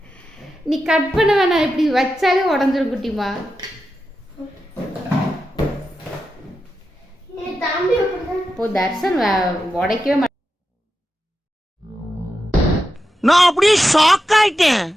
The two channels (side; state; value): both; normal; correlation 0.89